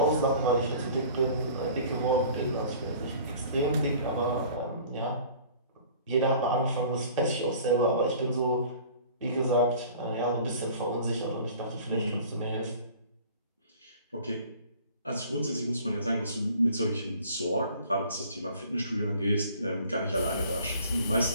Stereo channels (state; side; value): inverted; both; correlation -0.48